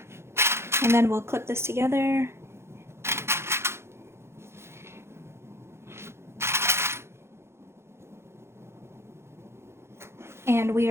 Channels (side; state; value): left; late; 0.12 ms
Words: And then we'll clip this together. And we